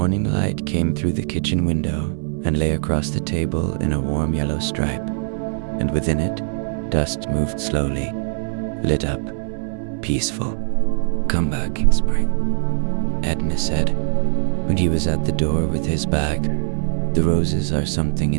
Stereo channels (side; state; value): left; silent; 60 dB below the other